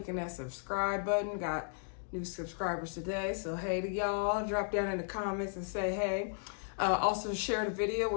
that subscribe button. Got new subscribers today, so hey to y'all. Drop down in the comments and say hey. Also share the video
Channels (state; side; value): silent; right; digital silence